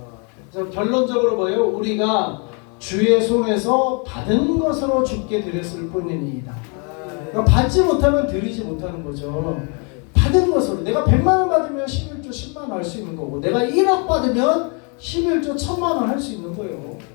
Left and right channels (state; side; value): quieter; right; 35.8 dB